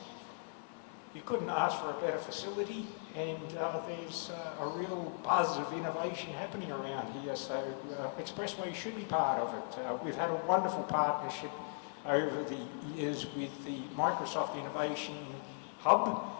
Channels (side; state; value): right; silent; digital silence